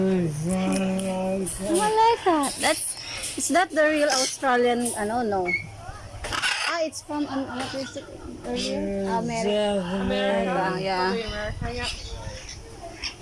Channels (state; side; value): identical; both; correlation 1.00